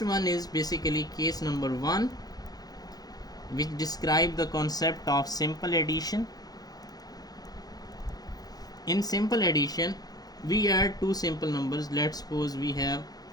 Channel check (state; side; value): late; right; 0.19 ms